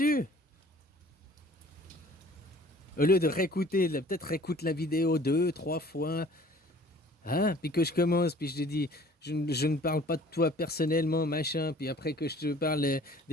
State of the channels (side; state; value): both; normal; correlation 0.51